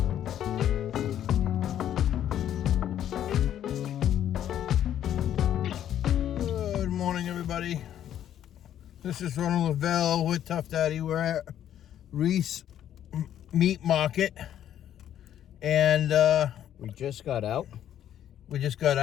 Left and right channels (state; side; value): quieter; right; 10.8 dB